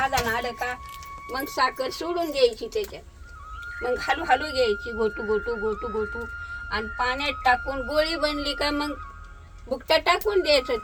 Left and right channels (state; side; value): identical; both; correlation 1.00